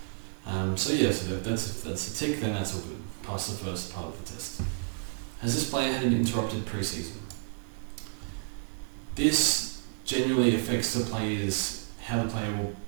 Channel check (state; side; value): silent; left; digital silence